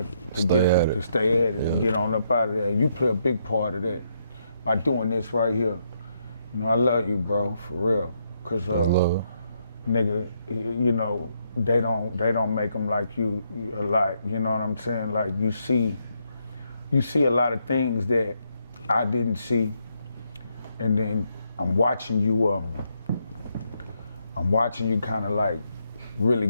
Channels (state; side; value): inverted; both; correlation -0.77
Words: stay at it and get on up out of there. And you play a big part of that by doing this right here. You know, I love you, bro, for real. Cause nigga, you know, they don't make them like you a lot. You know what I'm saying? Like you see a lot of things that I didn't see, and then I'm watching you kind of like really